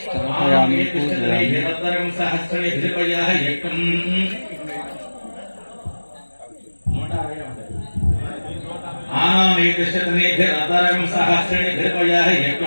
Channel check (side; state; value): both; inverted; correlation -1.00